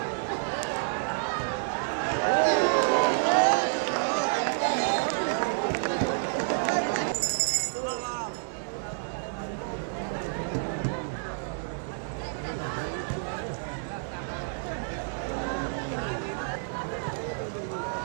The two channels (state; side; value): silent; left; digital silence